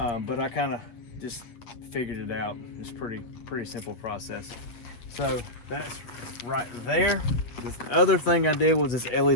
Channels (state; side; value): late; right; 8.4 ms